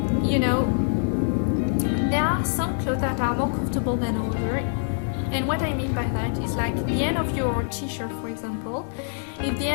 you know, there are some clothes that are more comfortable than others. And what I mean by that is, like, the end of your t-shirt, for example. If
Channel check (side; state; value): right; silent; 62 dB below the other